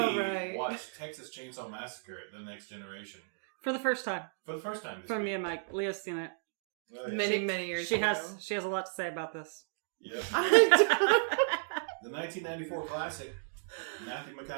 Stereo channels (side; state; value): left; silent; digital silence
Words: watched Texas Chainsaw Massacre: The Next Generation For the first time. for the first time this From week. me and Mike. Leah's seen it. Oh, yeah. Many years She ago. has a lot to say about this. Yep. I The 1994 classic, Matthew